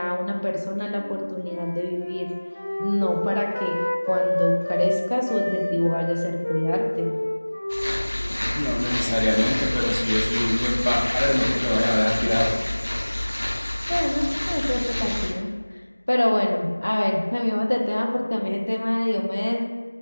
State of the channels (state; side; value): inverted; both; correlation -1.00